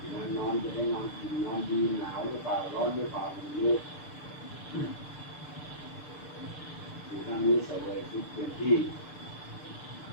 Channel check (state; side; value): late; right; 6.7 ms